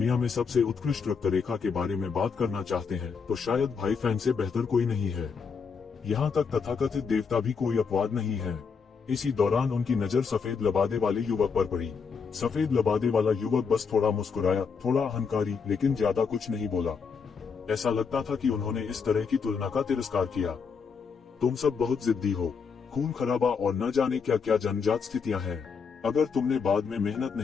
में सबसे उत्कृष्ट रक्त रेखा के बारे में बात करना चाहते हैं तो शायद भाई फैन से बेहतर कोई नहीं है। यहाँ तक तथाकथित देवता भी कोई अपवाद नहीं है। इसी दौरान उनकी नजर सफेद लबादे वाले युवक पर पड़ी। सफेद लबादे वाला युवक बस थोड़ा मुस्कुराया, थोड़ा अहंकारी, लेकिन ज्यादा कुछ नहीं बोला। ऐसा लगता था कि उन्होंने इस तरह की तुलना का तिरस्कार किया। तुम सब बहुत जिद्दी हो, खून खराबा और न जाने क्या क्या जन्मजात स्थितियां हैं। अगर तुमने बाद में मेहनत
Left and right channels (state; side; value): quieter; right; 5.7 dB